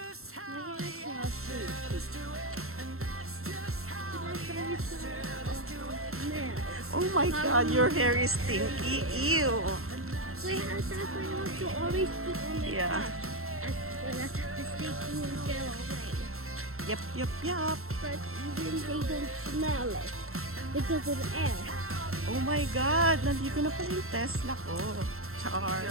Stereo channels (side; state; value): left; late; 0.62 ms